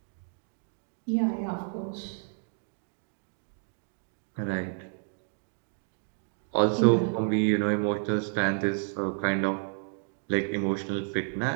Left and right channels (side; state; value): left; silent; 57 dB below the other